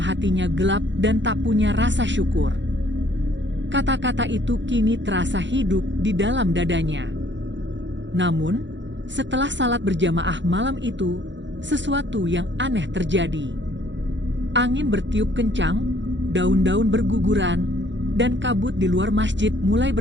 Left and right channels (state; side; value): late; left; 0.53 ms